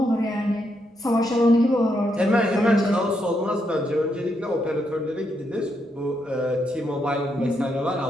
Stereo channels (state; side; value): normal; both; correlation 0.79